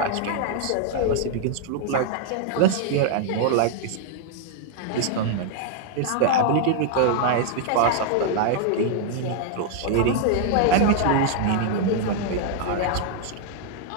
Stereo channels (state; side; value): different; both; correlation -0.01